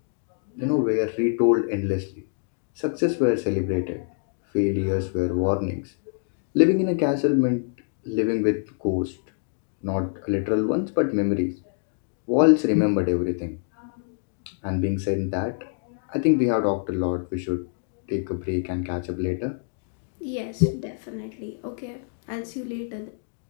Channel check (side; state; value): right; silent; digital silence